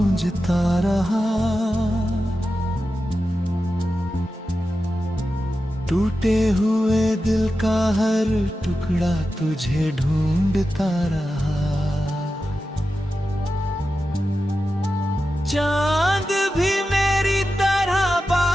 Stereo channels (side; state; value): both; normal; correlation 0.91